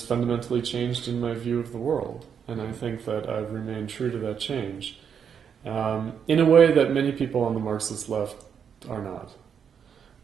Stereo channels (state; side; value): quieter; left; 7.5 dB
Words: fundamentally changed in my view of the world. And I think that I've remained true to that change. In a way that many people on the Marxist left are not.